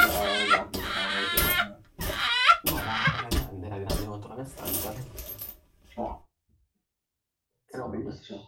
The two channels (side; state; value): both; identical; correlation 1.00